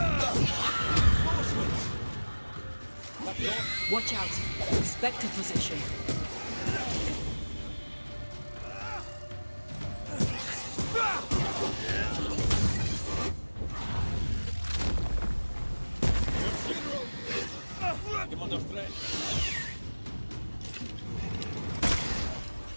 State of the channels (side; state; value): both; inverted; correlation -1.00